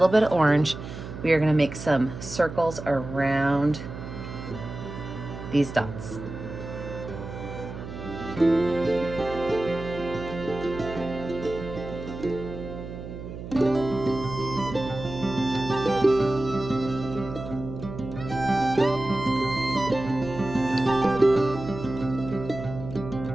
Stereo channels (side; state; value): right; noise; hum, 10 dB below the sound